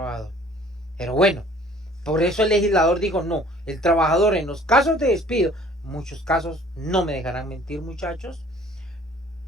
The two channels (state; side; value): normal; both; correlation 0.53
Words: Pero bueno, por eso el legislador dijo: no, el trabajador en los casos de despido, muchos casos, no me dejarán mentir, muchachos,